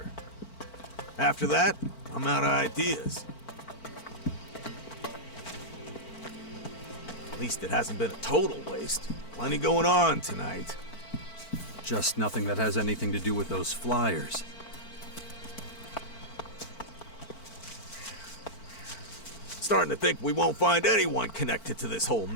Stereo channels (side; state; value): right; late; 4.5 ms